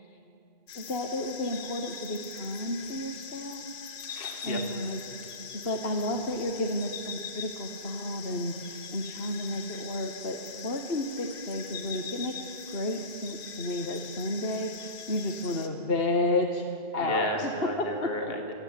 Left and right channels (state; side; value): late; right; 2.6 ms